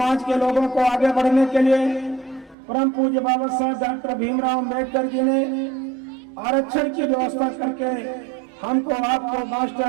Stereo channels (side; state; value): left; drops out; at 2.6 s